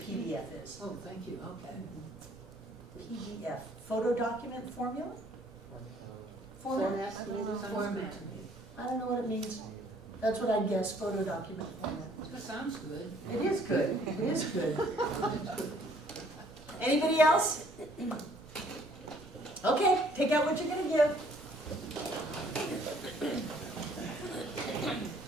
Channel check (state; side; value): noise; right; rumble, 22 dB below the sound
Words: is. Oh, thank you, okay. PDF, photo document formula? Format, I maybe don't know, something? format. I don't know what it means. That's what I guess, photo document format. That sounds good. It is good, it is good. Anybody else? Okay, take out what you're gonna give.